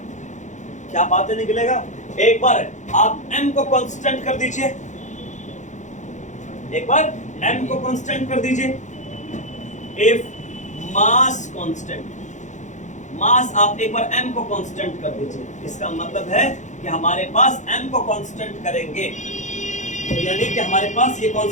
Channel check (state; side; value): late; right; 0.35 ms